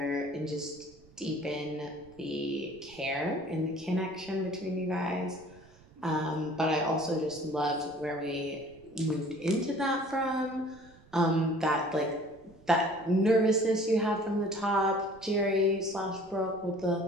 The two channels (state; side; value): noise; right; rumble, 25 dB below the sound